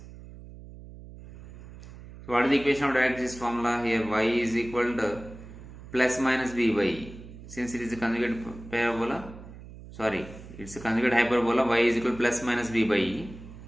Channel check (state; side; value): noise; right; hum, 16 dB below the sound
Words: So what is the equation of directrices formula? Here y is equal to plus minus b by e. Since it is a conjugate parabola, sorry, it's a conjugate hyperbola, y is equal to plus minus b by e.